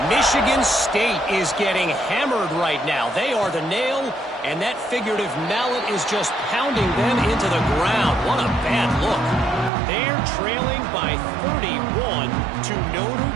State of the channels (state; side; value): drops out; left; at 9.7 s